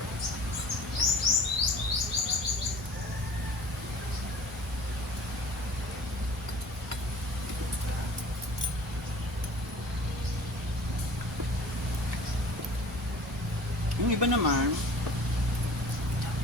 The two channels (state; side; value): normal; both; correlation 0.45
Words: Yung iba naman,